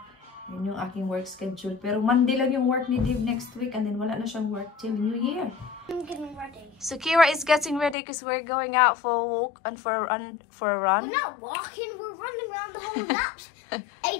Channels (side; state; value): right; drops out; at 8.0 s